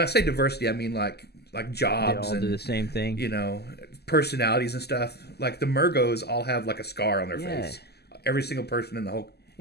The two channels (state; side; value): late; right; 0.47 ms